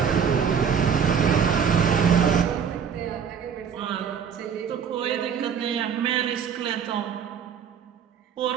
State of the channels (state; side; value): quieter; left; 7.3 dB